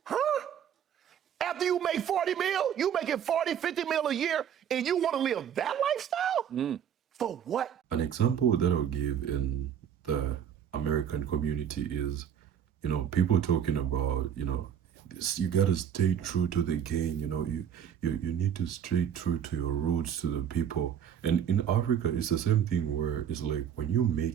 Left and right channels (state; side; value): quieter; left; 8.9 dB